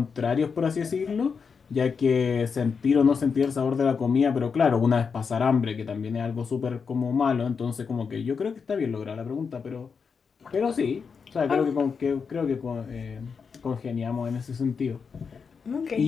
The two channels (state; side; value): quieter; right; 5.7 dB